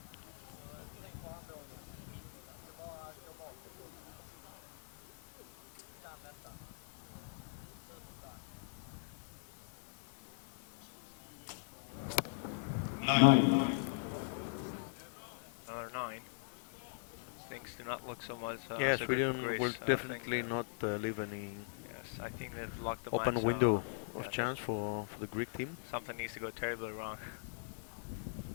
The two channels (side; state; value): right; silent; digital silence